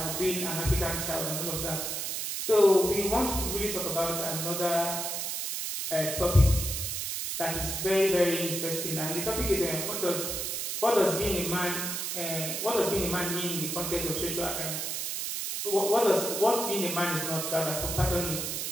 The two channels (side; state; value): right; noise; hiss, 3 dB below the sound